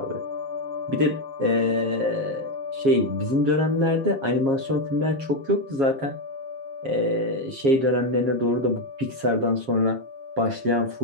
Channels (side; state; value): left; late; 7.4 ms